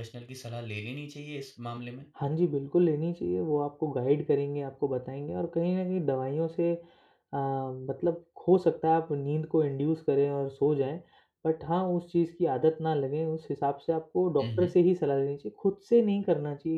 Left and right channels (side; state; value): both; identical; correlation 1.00